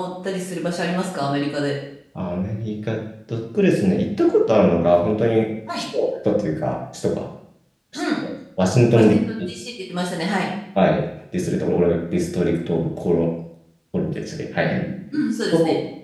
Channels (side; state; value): both; identical; correlation 1.00